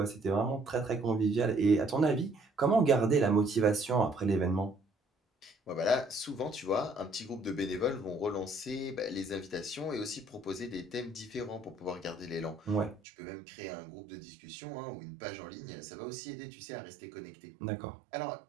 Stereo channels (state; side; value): drops out; left; at 13.0 s